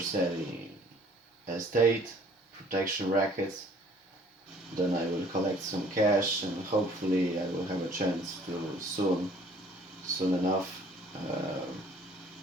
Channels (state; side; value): normal; both; correlation 0.56